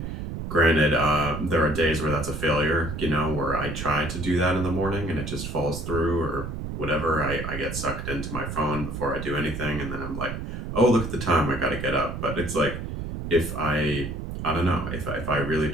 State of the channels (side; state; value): right; noise; rumble, 6 dB below the sound